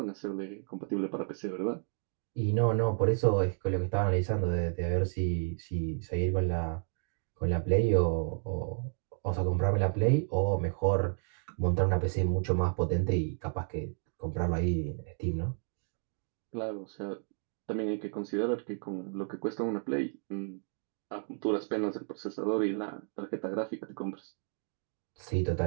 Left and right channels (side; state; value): left; silent; 56 dB below the other